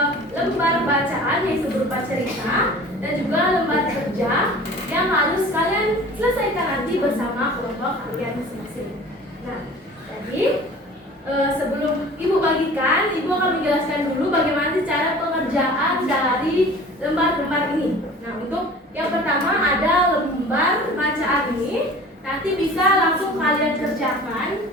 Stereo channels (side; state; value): both; normal; correlation 0.43